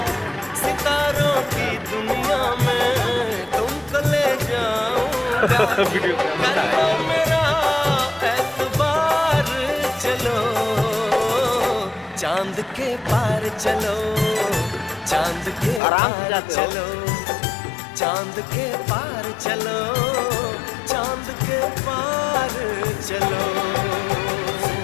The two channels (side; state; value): right; drops out; at 15.8 s